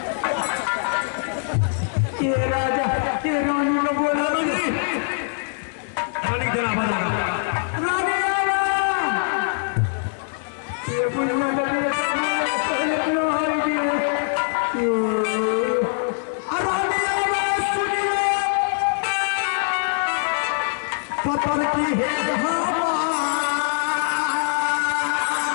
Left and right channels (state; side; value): silent; right; digital silence